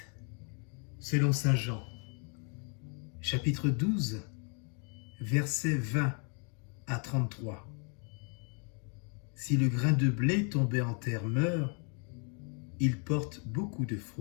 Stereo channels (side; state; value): right; quieter; 39.4 dB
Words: selon saint Jean, chapitre 12, versets 20 à 33. Si le grain de blé tombé en terre meurt, il porte beaucoup de